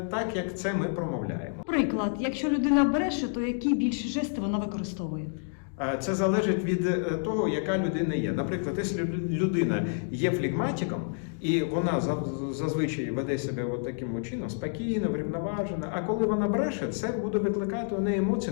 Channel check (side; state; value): right; silent; digital silence